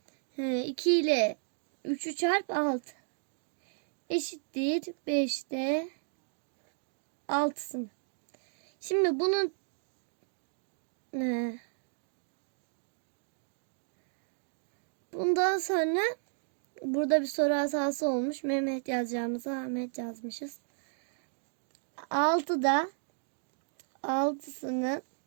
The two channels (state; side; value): silent; left; digital silence